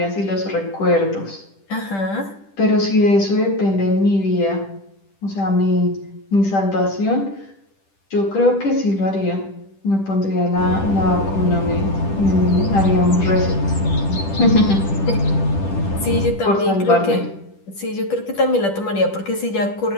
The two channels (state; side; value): late; right; 10 ms